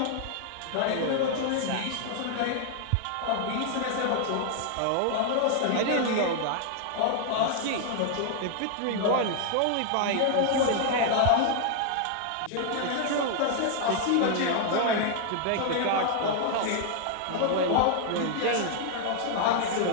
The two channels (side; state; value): both; different; correlation 0.00